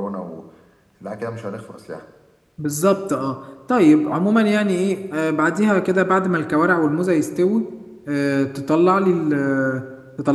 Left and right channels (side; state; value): both; identical; correlation 1.00